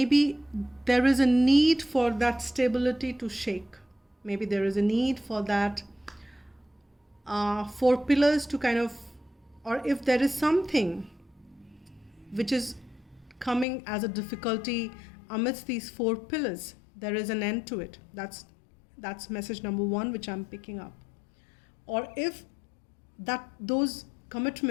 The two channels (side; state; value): right; drops out; at 13.7 s